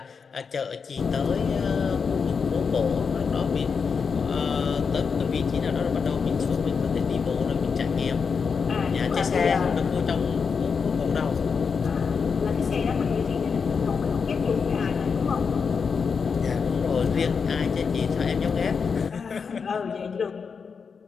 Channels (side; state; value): right; quieter; 5.7 dB